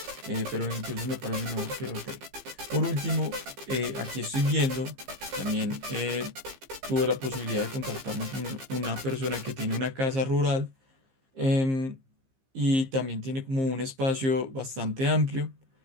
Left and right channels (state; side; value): late; left; 15 ms